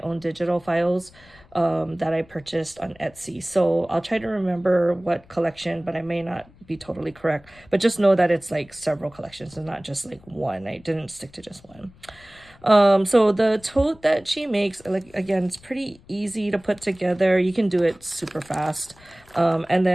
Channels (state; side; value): noise; left; rumble, 26 dB below the sound